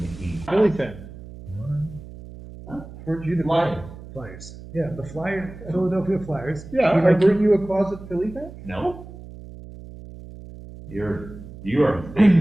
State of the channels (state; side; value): noise; right; hum, 15 dB below the sound